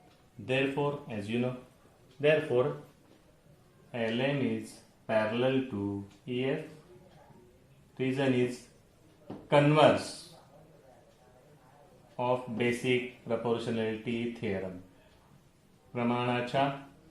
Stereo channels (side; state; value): both; identical; correlation 1.00